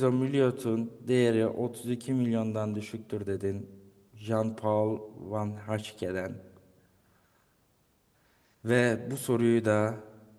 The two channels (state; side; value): identical; both; correlation 1.00